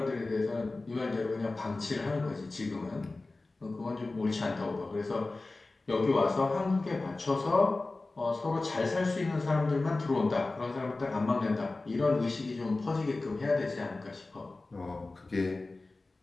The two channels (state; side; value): quieter; right; 3.3 dB